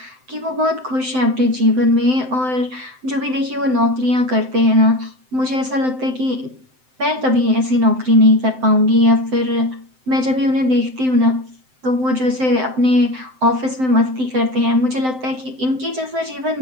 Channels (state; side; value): late; left; 7.8 ms